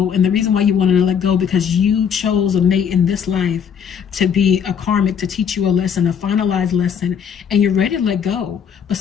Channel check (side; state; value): right; quieter; 7.5 dB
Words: And the reason why you wanted to let go, because you chose a mate in this life to be a karmic, to teach you a lesson, a finalized lesson, and you're ready to let go. But